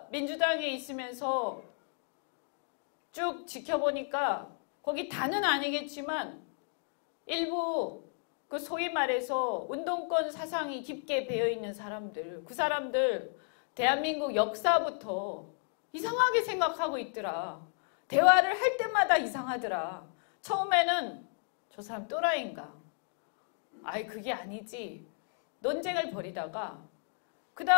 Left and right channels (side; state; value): right; silent; 56 dB below the other